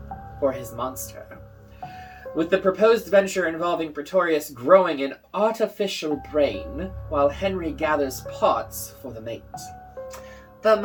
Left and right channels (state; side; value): identical; both; correlation 1.00